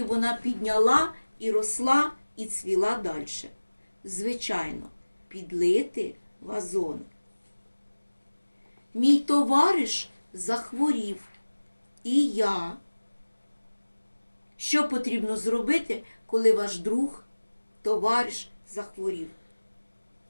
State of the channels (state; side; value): inverted; both; correlation -1.00